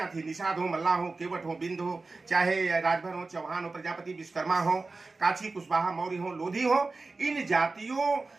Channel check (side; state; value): left; quieter; 3.7 dB